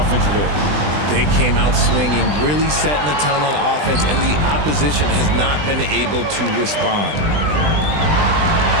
end. They came out swinging, really setting the tone on offense, and the opposition has not been able to respond.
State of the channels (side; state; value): left; late; 20 ms